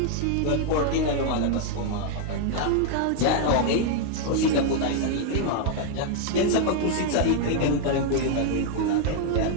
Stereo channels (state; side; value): different; both; correlation 0.00